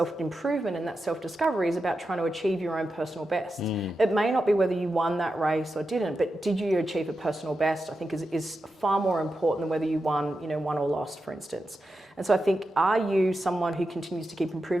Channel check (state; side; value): normal; both; correlation 0.89